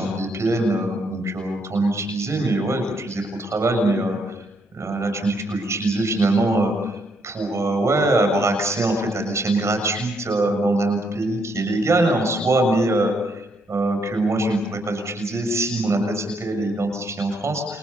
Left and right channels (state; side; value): normal; both; correlation 0.73